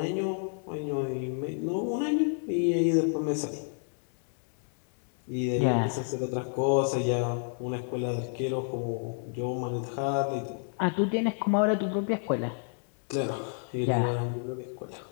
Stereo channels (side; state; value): right; silent; 58 dB below the other